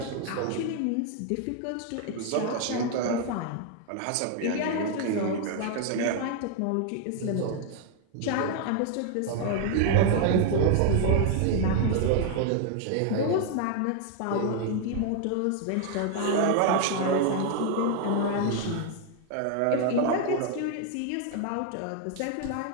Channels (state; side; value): different; both; correlation 0.01